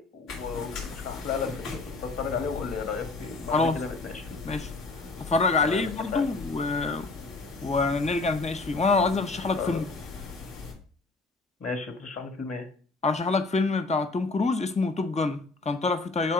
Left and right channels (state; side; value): quieter; right; 3.6 dB